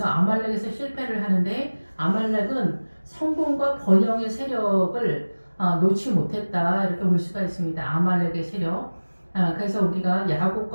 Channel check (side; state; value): both; inverted; correlation -1.00